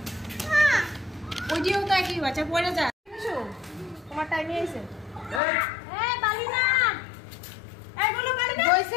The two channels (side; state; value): right; drops out; at 5.4 s